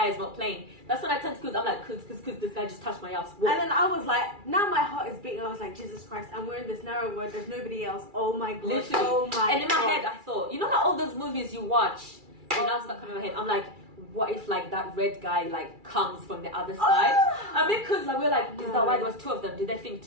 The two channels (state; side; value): late; left; 2.3 ms